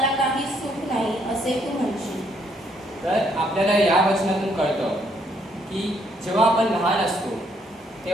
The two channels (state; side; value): normal; both; correlation 0.70